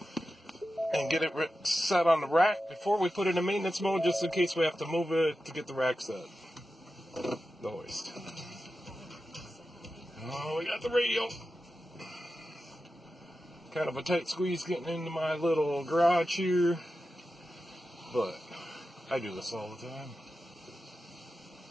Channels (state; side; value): normal; both; correlation 0.92